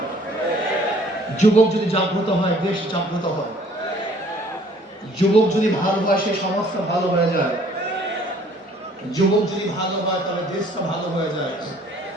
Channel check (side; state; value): both; normal; correlation 0.57